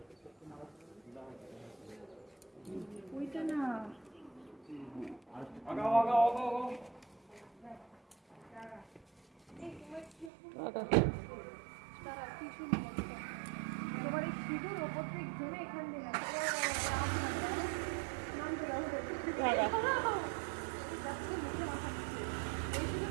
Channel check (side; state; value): left; drops out; at 10.3 s